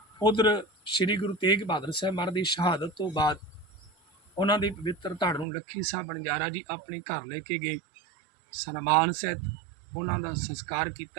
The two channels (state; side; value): drops out; left; at 5.5 s